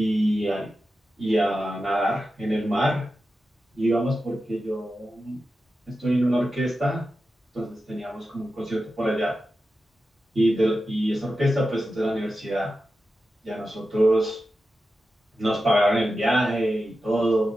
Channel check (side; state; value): both; normal; correlation 0.91